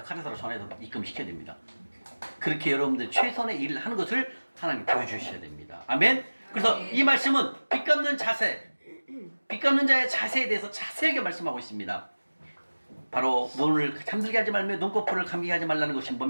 카드사로 전화해서 입금시켜야 됩니다. 그렇게 여러분들 최선의 일을 하는 것을 하나님 보여주셔야 됩니다. 아멘? 그래서 이 말씀은 빚 갚는 자세, 빚 갚는 자의 자세에 대해서 자세하게 말씀하고 있습니다. 바로 눈을 잠들게 하지 말며 눈꺼풀을 감기게 하지 말라는 것이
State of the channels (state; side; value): inverted; both; correlation -1.00